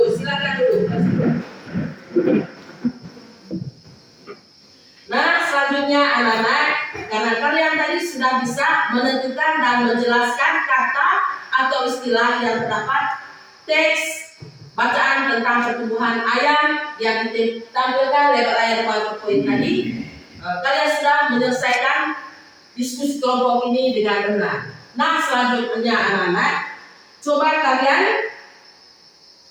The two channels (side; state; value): both; identical; correlation 1.00